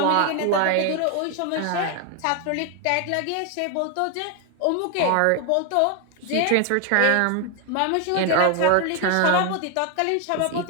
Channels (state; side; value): different; both; correlation 0.01